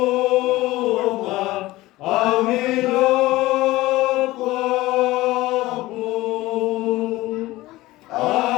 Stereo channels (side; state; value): right; quieter; 18.2 dB